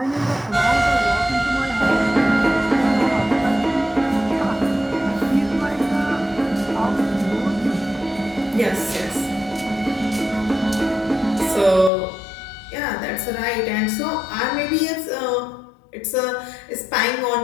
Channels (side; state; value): right; drops out; at 11.9 s